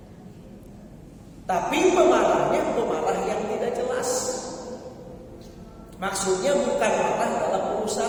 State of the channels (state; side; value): identical; both; correlation 1.00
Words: Tapi pemarahnya pemarah yang tidak jelas. Maksudnya bukan marah dalam